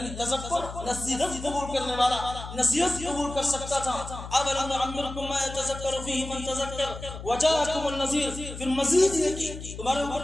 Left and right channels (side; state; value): left; noise; hum, 10 dB below the sound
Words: نصیحت قبول کرنے والا نصیحت قبول کر سکتا تھا۔ اولم نعمرکم ما یتذکر فیہ من تذکر وجاءکم النذیر، پھر مزید یہ کہ تمہارے